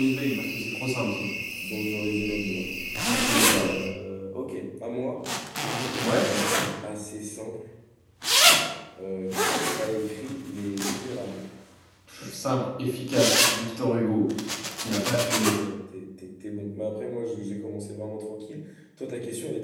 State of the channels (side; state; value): both; identical; correlation 1.00